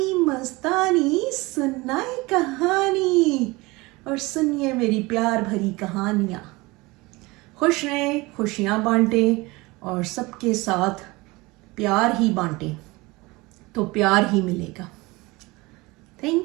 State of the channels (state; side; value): quieter; left; 22.9 dB